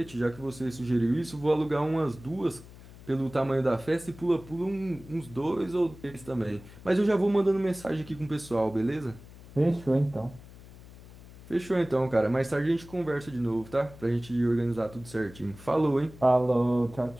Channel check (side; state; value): left; noise; hum, 19 dB below the sound